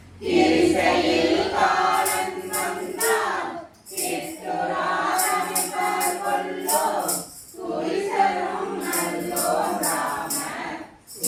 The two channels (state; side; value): identical; both; correlation 1.00